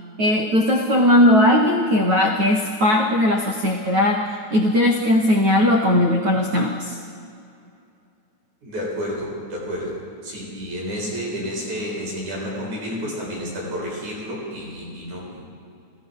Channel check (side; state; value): left; late; 9.2 ms